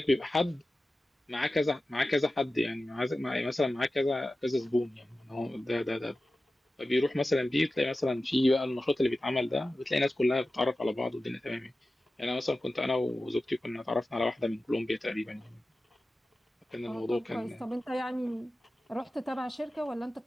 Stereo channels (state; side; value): normal; both; correlation 0.95